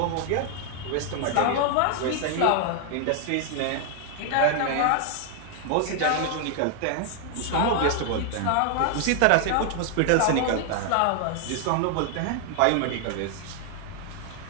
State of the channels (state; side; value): different; both; correlation 0.00